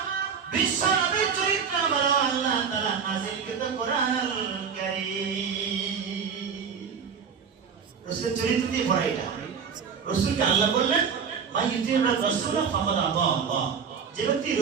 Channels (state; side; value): quieter; left; 6.5 dB